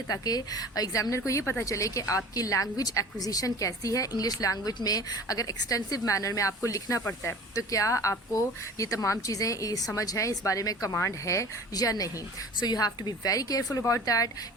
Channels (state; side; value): normal; both; correlation 0.42